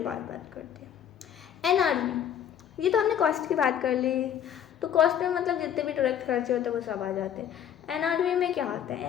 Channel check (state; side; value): quieter; right; 9.5 dB